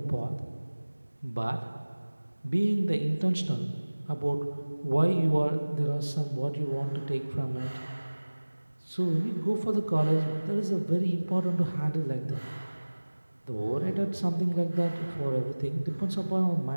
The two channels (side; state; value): both; inverted; correlation -1.00